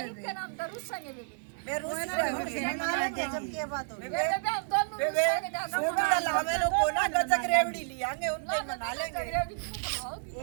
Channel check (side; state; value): left; silent; 57 dB below the other